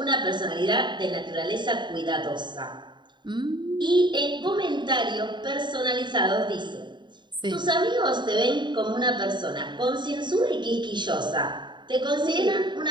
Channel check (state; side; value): late; left; 0.22 ms